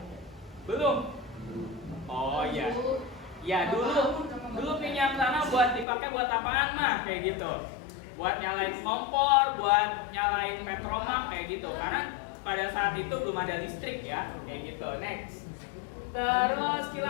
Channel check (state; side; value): drops out; right; at 5.9 s